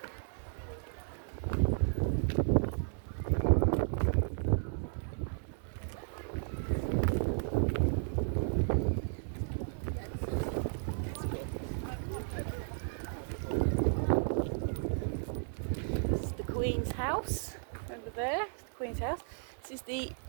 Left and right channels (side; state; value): left; silent; digital silence